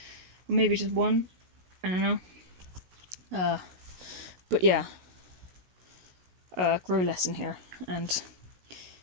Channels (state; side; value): late; left; 16 ms